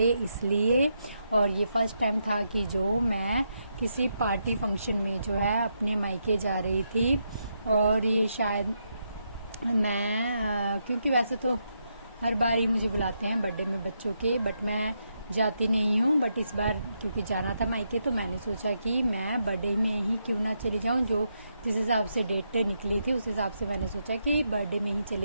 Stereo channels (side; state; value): both; inverted; correlation -0.81